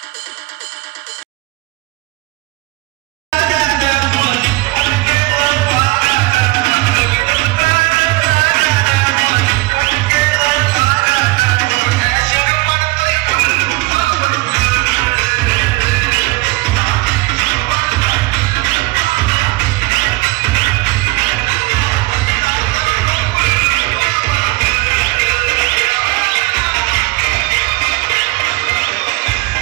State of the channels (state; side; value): quieter; left; 22.4 dB